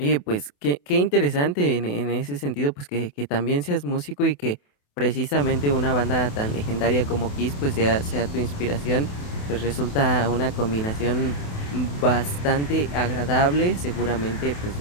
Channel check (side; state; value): right; late; 28 ms